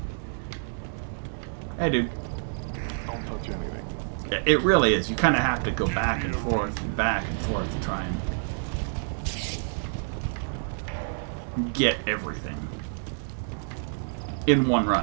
Hey, dude. Don't touch anything. Yeah, it really is. You kind of have to go back and forth to try and get everything in one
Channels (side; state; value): left; silent; digital silence